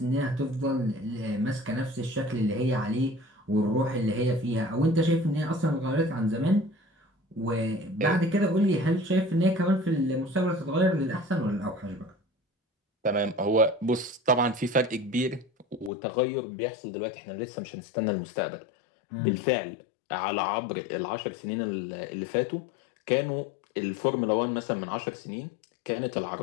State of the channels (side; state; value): right; drops out; at 15.9 s